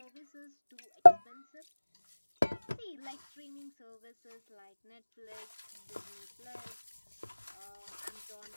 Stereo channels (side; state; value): both; inverted; correlation -1.00